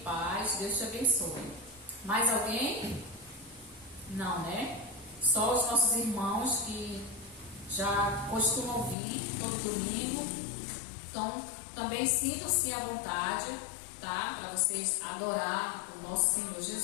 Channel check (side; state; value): right; drops out; at 9.0 s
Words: Deus te abençoe. Mais alguém? Não, né? Só os nossos irmãos que já costumam vir todo domingo. Então, também sintam-se à vontade, tá? Para vocês adorar o nosso Senhor